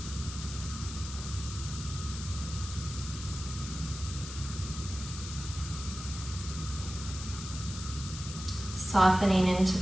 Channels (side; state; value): left; noise; hiss, 10 dB below the sound